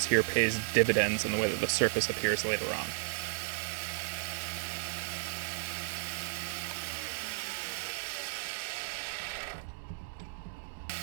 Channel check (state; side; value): silent; left; digital silence